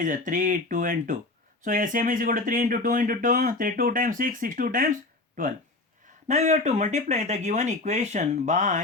3, 2 and 2. So LCM is equal to 3 into 2 into 2. 3, 2 times 6, 6, 2 times 12. Now we have to multiply the given equation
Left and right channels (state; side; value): quieter; right; 3.1 dB